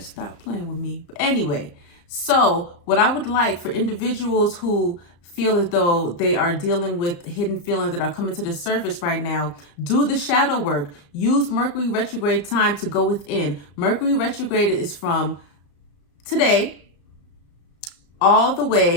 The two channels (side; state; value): right; late; 34 ms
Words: playing with me. But anyway, so what I would like for individuals who feel as though they are dealing with hidden feelings that are coming to the surface right now, do the shadow work. Use Mercury retrograde time to go within. Mercury retrograde is from today all the